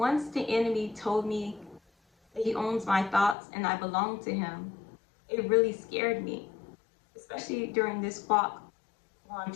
the enemy told me that he owns my thoughts and I belong to him, it really scared me, especially during this walk while I'm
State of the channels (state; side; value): drops out; right; at 3.4 s